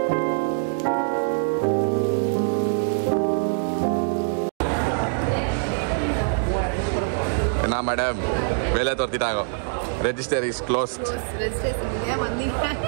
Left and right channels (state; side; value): silent; left; digital silence